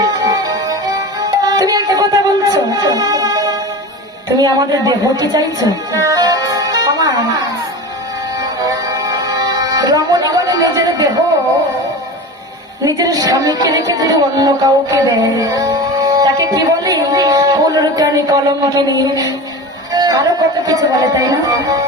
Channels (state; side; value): normal; both; correlation 0.30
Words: তুমি একটা কথা বলছো, তুমি আমাদের দেহ কি চাইছো? আমার রমণীগণে নিজের দেহ নিজের স্বামীকে রেখে যদি অন্য কাউকে দেয় তাকে কি বলি? কুলরুকানি কলঙ্কিনী, আরো কত কিছু বলে, তাই না?